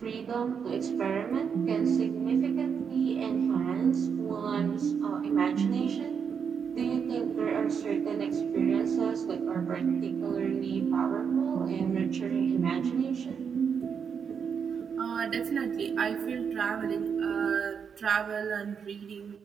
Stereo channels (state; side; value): quieter; left; 6.8 dB